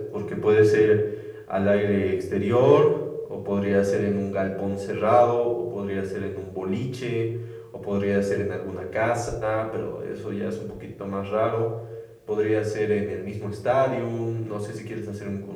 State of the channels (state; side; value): identical; both; correlation 1.00